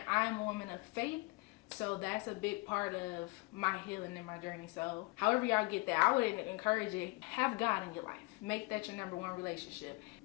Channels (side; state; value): right; quieter; 26.0 dB